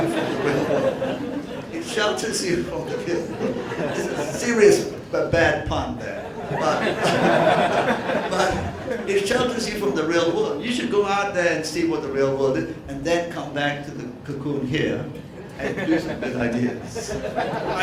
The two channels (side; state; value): both; identical; correlation 1.00